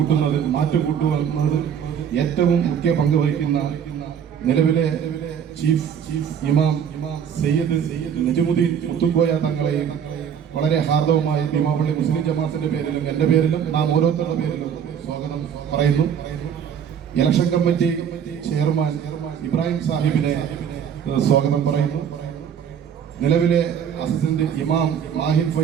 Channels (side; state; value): left; quieter; 8.2 dB